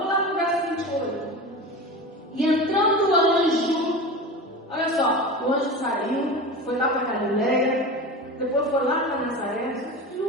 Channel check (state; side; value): normal; both; correlation 0.29